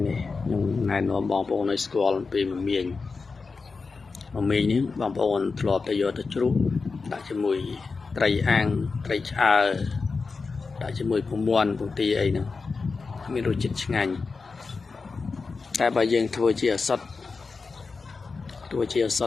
នេះខ្ញុំណែនាំបងប្អូនឲ្យស្គាល់ពីមមាញនេះបងប្អូនធ្លាប់តែយកទៅជ្រូកដាក់ជាមួយត្រីអាំងត្រីឆ្អើរដាក់ជាមួយពងមាន់ពងទាអីហ្នឹងមានរសជាតិឆ្ងាញ់តែបើយើងធ្វើជាអសុទ្ធ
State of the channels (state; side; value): quieter; right; 4.5 dB